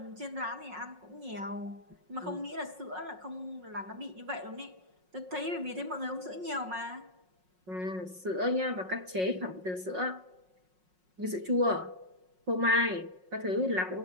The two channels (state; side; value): late; left; 5.5 ms